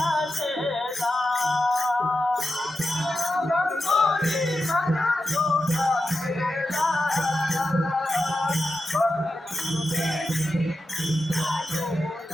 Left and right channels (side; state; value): both; normal; correlation 0.90